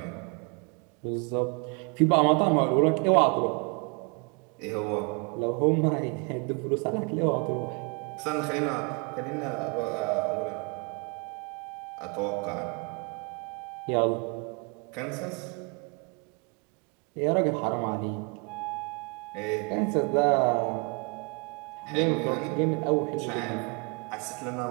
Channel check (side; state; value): left; quieter; 33.9 dB